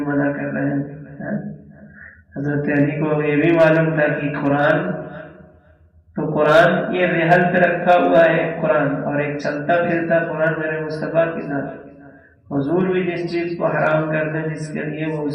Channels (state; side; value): identical; both; correlation 1.00